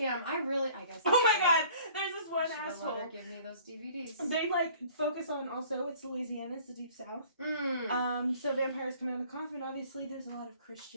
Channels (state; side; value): inverted; both; correlation -0.52